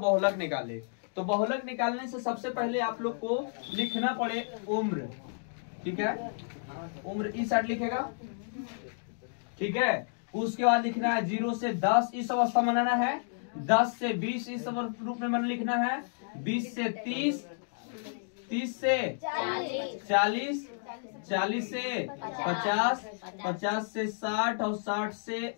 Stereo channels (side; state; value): right; silent; digital silence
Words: निकाले। तो बहुलक निकालने से सबसे पहले आप लोग को लिखना पड़े उम्र, ठीक है, उम्र इस साइड लिखेगा, ठीक है। उसके बाद लिखना है 0 से 10 इस अवस्था में बनाना है, 10 से 20 इस रूप में मन लिखना है, 20 से 30, 30 से 40, 40 से 50, 50 से 60 और 60